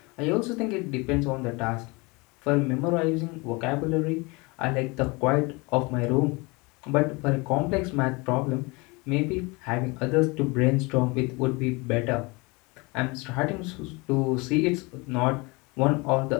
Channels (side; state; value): right; quieter; 26.6 dB